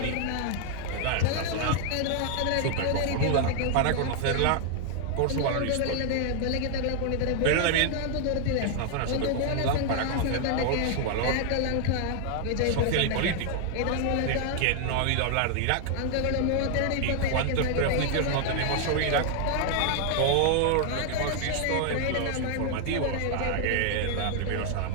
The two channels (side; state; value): both; different; correlation 0.00